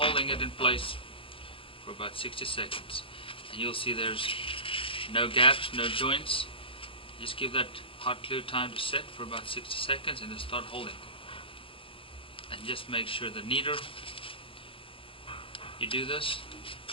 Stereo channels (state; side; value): late; right; 0.26 ms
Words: it in place for about 60 seconds, and you'll see there's no gaps, no joints. Just give that hot glue time to set for about 60 seconds and then start holding, and just make sure the neater you do this,